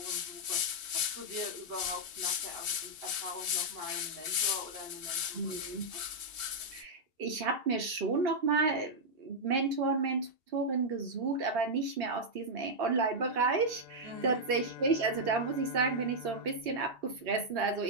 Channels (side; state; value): left; late; 2.8 ms